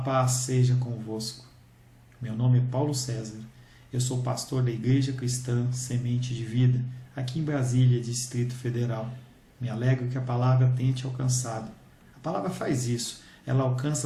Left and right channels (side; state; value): both; identical; correlation 1.00